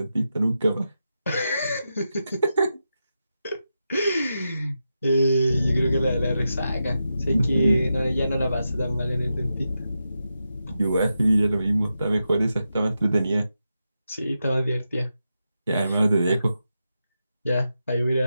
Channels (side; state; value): both; inverted; correlation -0.88